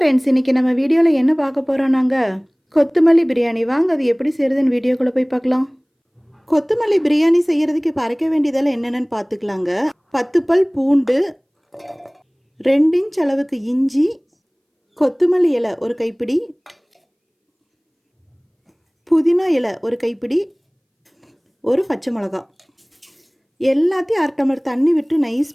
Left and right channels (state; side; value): identical; both; correlation 1.00